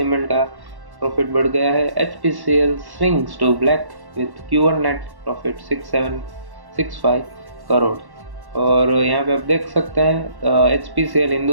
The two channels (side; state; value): left; late; 1.1 ms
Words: का प्रॉफिट बढ़ गया है। HPCL swings to black with Q1 net profit 6765 crore. और यहाँ पे आप देख सकते हैं HPCL